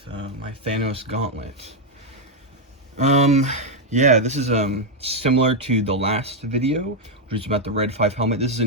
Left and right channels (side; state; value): both; normal; correlation 0.01